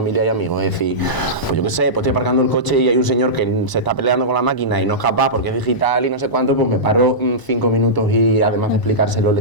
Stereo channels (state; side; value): late; right; 1.0 ms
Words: y amigos? Es decir, pues yo qué sé, pues estoy aparcando el coche y hay un señor que se está peleando con la máquina y no es capaz porque es digital y no sé cuánto, pues me paro 5 minutos y además de explicárselo le